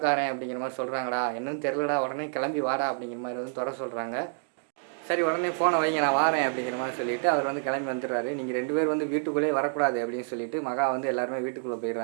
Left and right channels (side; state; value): left; silent; digital silence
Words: அப்படிங்கிற மாதிரி சொல்கிறாங்கடா, என்னன்னு தெரிலடா, உடனே கிளம்பி வாடா அப்படிங்கிற மாதிரி வந்து துறை சொல்கிறாங்க. சரி உடனே ஃபோனை வைங்க நான் வாரேன் அப்படிங்கிற மாதிரி சொல்லிவிட்டு அவர் வந்து கிளம்பி வந்துடுறாரு. நீங்கள் 2 பேர் வந்து வீட்டுக்குள்ளேயே வரக்கூடாது அப்படின்னு சொல்லிட்டு மகா வந்து எல்லாருமே வீட்டுக்குள்ளே